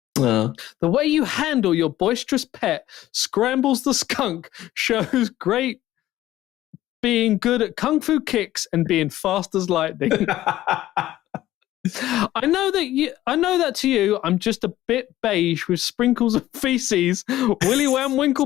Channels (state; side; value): quieter; right; 14.5 dB